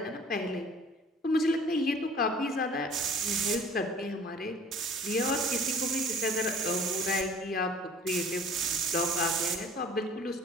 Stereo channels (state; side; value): normal; both; correlation 0.49